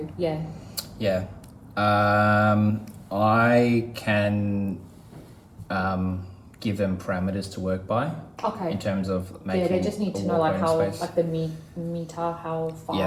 yeah. Yeah. I can give them parameters to work by. Okay. In terms of making. Yeah, they just need to know how the meter, how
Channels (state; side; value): identical; both; correlation 1.00